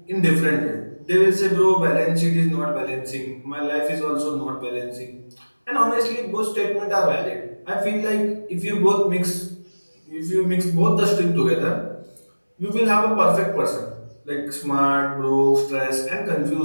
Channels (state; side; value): inverted; both; correlation -1.00